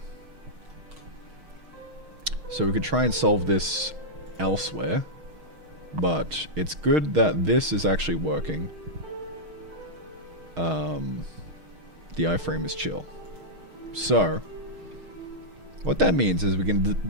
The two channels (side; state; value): left; late; 6.4 ms